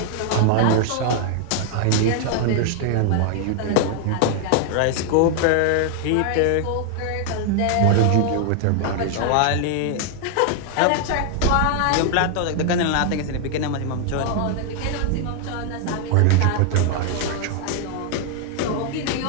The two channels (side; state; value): both; different; correlation 0.00